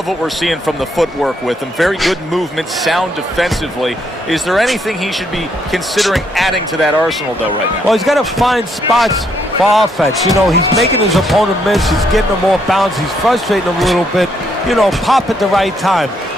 what we're seeing from the footwork with him. Very good movement, sound defensively. Is there anything he should be considering adding to that arsenal, though, right now? Well, he's got to find spots for offense. You know, he's making his opponent miss. He's getting him off balance. He's frustrating him a little bit. You know, pop at the right time.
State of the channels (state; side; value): normal; both; correlation 0.73